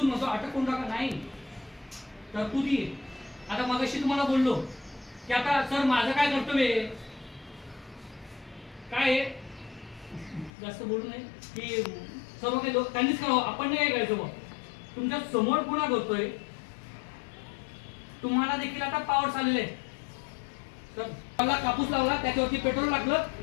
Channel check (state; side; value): drops out; right; at 10.5 s